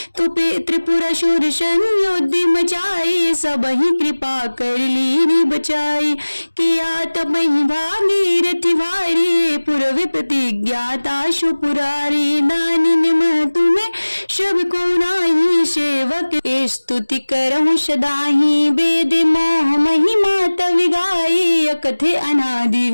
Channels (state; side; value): inverted; both; correlation -1.00